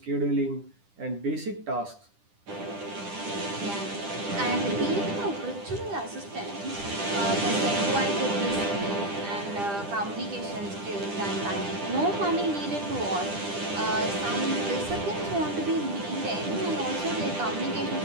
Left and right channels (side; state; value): left; late; 10 ms